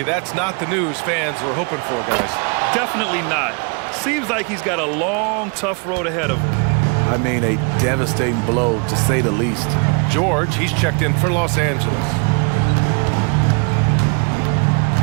that's not the news fans were hoping for, guys. Definitely not. Seems like he's got a long, tough road ahead of him. I mean, a devastating blow, to say the least. George, he's checked in for Los Angeles.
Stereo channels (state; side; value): quieter; left; 36.0 dB